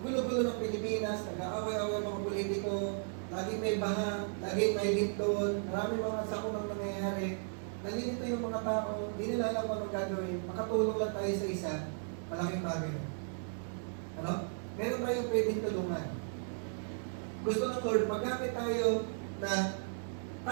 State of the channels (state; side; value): silent; left; digital silence